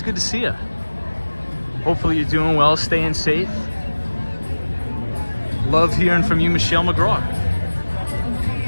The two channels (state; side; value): inverted; both; correlation -1.00